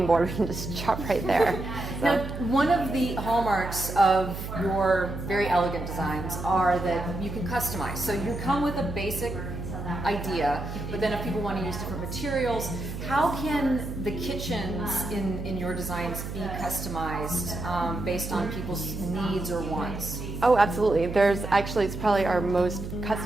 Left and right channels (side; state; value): right; noise; hum, 7 dB below the sound